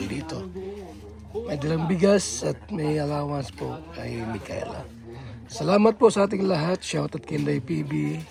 dito. May dalang bigas at may allowance po kay Micaela. Salamat po sa ating lahat. Shoutout kay Inday PB.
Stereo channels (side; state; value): both; identical; correlation 1.00